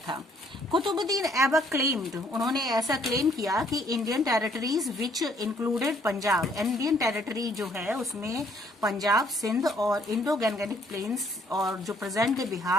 कुतुबुद्दीन ऐबक क्लेम्ड, उन्होंने ऐसा क्लेम किया कि Indian territories which included Punjab, Indian territory जो है उसमें पंजाब, सिंध और इंडो गैंगेटिक प्लेन्स और जो प्रेजेंट डे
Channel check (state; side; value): normal; both; correlation 0.65